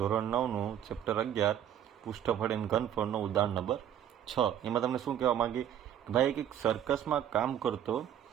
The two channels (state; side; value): quieter; left; 10.2 dB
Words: 9નું ચેપ્ટર 11 પૃષ્ઠફળ એન્ડ ઘનફળનો ઉદાહરણ નંબર 6. એમાં તમને શું કહેવા માંગી કે ભાઈ એક સર્કસમાં કામ કરતો